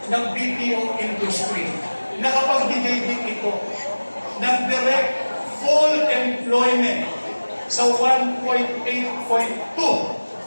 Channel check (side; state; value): both; inverted; correlation -1.00